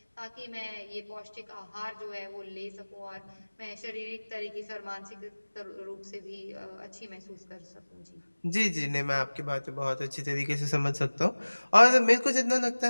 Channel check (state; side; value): inverted; both; correlation -1.00